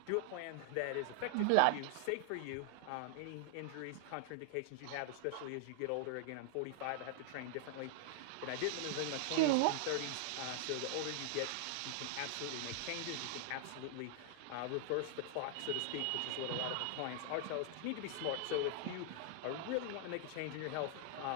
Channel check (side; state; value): both; different; correlation 0.00